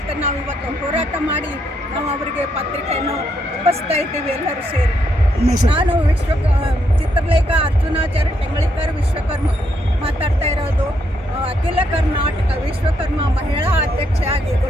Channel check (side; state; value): both; normal; correlation 0.76